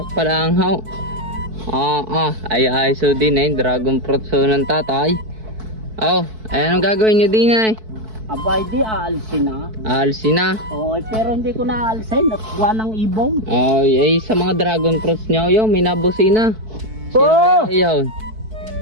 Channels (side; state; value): left; late; 4.6 ms